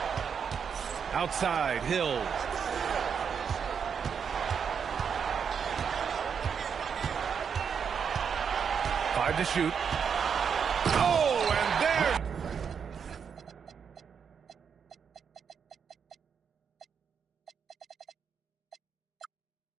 Outside, Hill. Five to shoot. Oh, and there.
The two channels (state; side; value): quieter; left; 6.9 dB